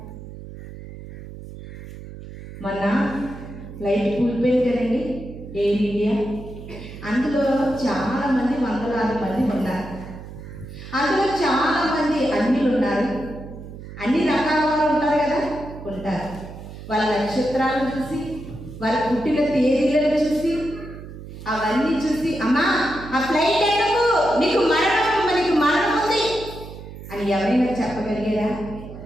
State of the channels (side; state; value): right; noise; hum, 13 dB below the sound